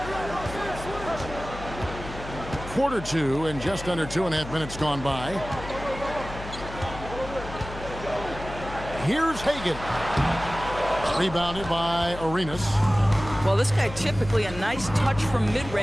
Quarter two and just under 2.5 minutes gone by. Here's Hagan. Rebounded by Arenas. Well, this guy typically a nice touch from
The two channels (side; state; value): left; noise; hum, 11 dB below the sound